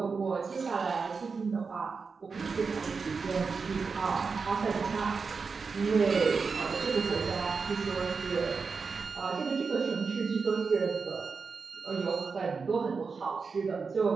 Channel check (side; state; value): left; quieter; 4.9 dB